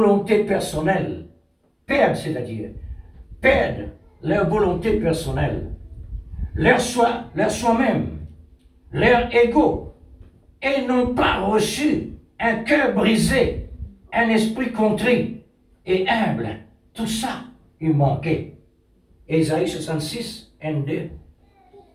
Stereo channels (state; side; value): identical; both; correlation 1.00